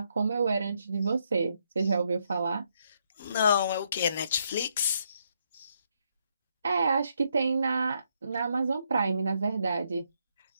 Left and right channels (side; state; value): both; inverted; correlation -0.76